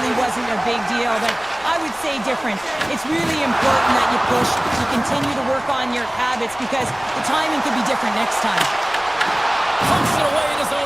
wasn't a big deal, but I would say different. It's really important that you push, you continue to work on your habits, because the timing could be different next time. Pumps it away in his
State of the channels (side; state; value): left; noise; rumble, 24 dB below the sound